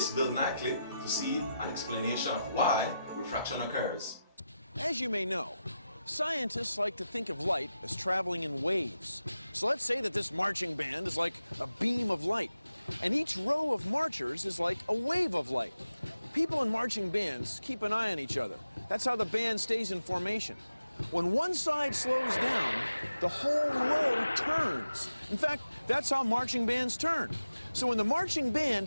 Bill Nye clip to see an explanation of why refraction occurs. As you may know, scientists like to think of light as traveling in waves. So let's say that this marching band is like a beam of light, and each row of marchers is like a wave of light. People in marching bands keep an eye on each other. That's how the band stays in formation. When one side slows down, the whole row turns. In fact, that's how marching bands turn. So when the marching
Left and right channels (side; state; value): both; inverted; correlation -0.90